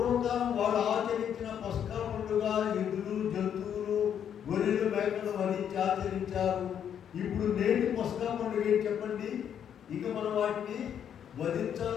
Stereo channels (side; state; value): right; quieter; 8.9 dB